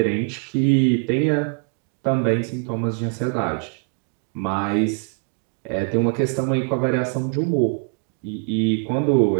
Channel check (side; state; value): left; quieter; 39.4 dB